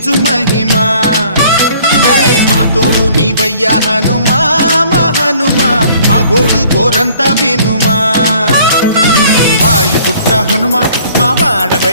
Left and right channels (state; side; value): inverted; both; correlation -0.56